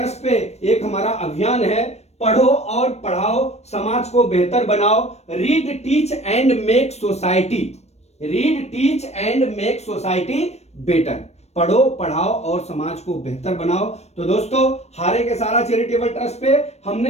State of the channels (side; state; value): right; late; 0.31 ms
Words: पे एक हमारा अभियान है, पढ़ो और पढ़ाओ, समाज को बेहतर बनाओ, read teach and make society, read teach and make society better, पढ़ो पढ़ाओ और समाज को बेहतर बनाओ। तो दोस्तों, हारे के सहारा चैरिटेबल ट्रस्ट पे